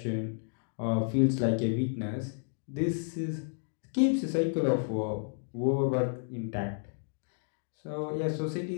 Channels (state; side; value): silent; right; digital silence